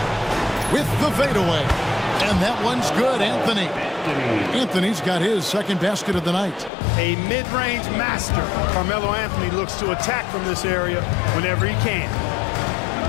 With the fadeaway. And that one's good, Anthony. Anthony's got his second basket of the night. A mid-range master. Carmelo Anthony looks to attack from this area whenever he can.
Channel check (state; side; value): drops out; right; at 6.7 s